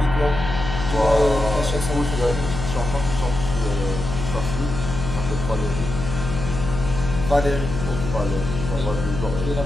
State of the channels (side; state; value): left; noise; hum, 6 dB below the sound